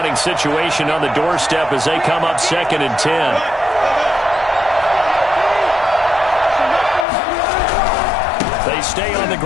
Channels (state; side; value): drops out; right; at 7.1 s